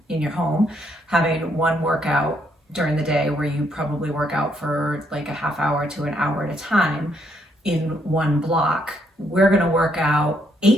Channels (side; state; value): both; normal; correlation 0.73